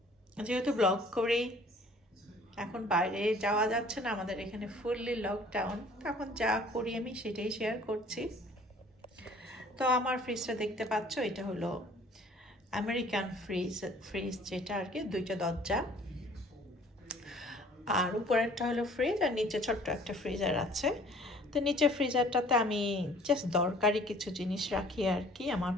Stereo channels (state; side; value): normal; both; correlation 0.53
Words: যেহেতু ব্লগ করি, এখন বাইরে যাওয়া যাচ্ছে না, আমাদের এখানে ফুললি লকডাউন, তখন যা করি আমি সেটাই শেয়ার করছি। তো আমার ফ্রিজটা দেখতে পাচ্ছ, এটা হলো আমেরিকান ফ্রিজ যেটা আর কি, দুইটা দরজা, আর উপরেরটা হলো ফ্রিজ, আর নিচে ছোট্ট একটা ফ্রিজার আছে। তো নিচের ফ্রিজারটাতে আমি জাস্ট দরকারি কিছু জিনিস রাখি আর কি, আমার